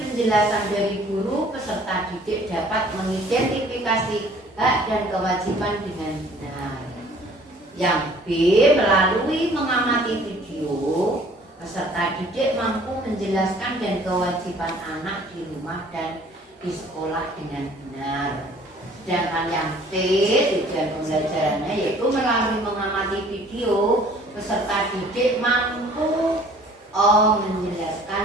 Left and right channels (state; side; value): normal; both; correlation 0.54